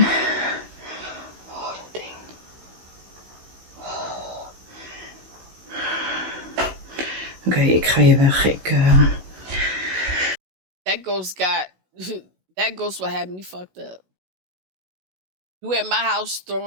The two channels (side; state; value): left; late; 16 ms